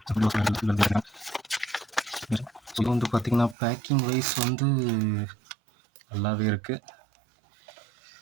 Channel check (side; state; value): left; drops out; at 3.6 s